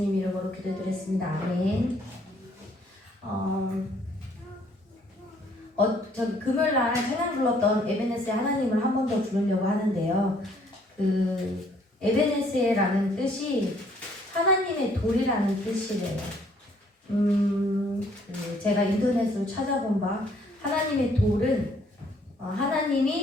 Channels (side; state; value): both; normal; correlation 0.64